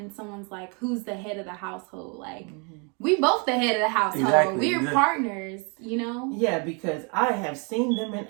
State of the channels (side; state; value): left; quieter; 34.8 dB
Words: someone's like, who's the head of the household? Like, we both the head of the household. Exactly. We're partners, you know? Yeah, because I have seen them in